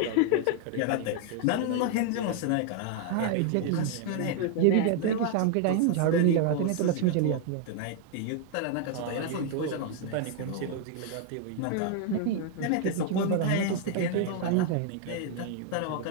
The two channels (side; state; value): both; different; correlation 0.00